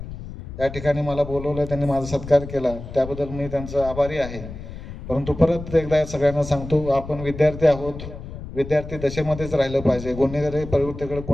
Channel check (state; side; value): noise; left; rumble, 11 dB below the sound